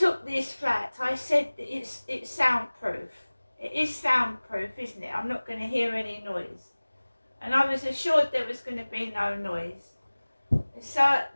this flat. I said that it's soundproof. It is soundproof, isn't it? I'm not going to hear any noise. And I was assured there was going to be no noise. So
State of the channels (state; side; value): inverted; both; correlation -1.00